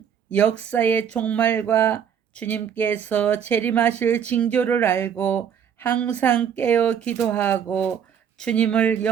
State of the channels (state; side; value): quieter; left; 8.2 dB